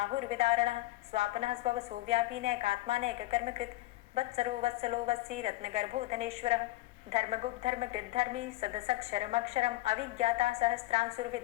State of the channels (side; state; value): right; quieter; 18.4 dB